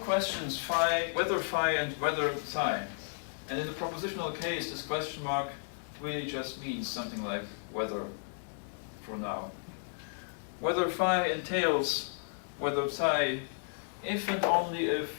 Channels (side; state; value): right; silent; 56 dB below the other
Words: phi, whether phi and whether psi. And in the propositional case, this question mark really just means something like whether for now. Whether phi entails whether psi, if and only if,